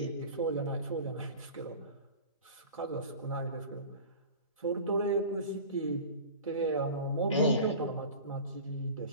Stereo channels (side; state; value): both; inverted; correlation -0.37